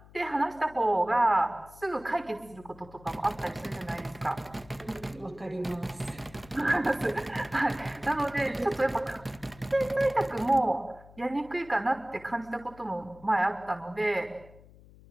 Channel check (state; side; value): noise; left; hum, 22 dB below the sound